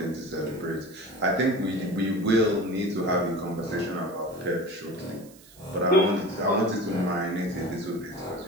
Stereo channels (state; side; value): noise; right; hiss, 23 dB below the sound